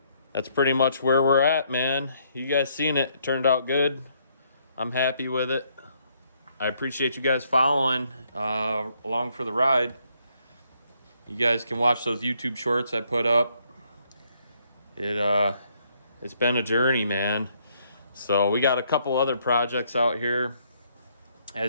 that's pretty much where we're at, man. You guys seen it. It turned out good. I'm happy with it. I appreciate you guys following along for the ride. You guys can watch those YouTube shorts I put up. It's been a journey, man. So we got a couple other projects out here.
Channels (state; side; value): inverted; both; correlation -0.71